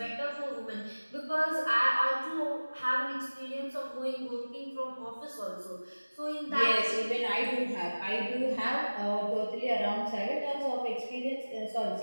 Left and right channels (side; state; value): both; inverted; correlation -1.00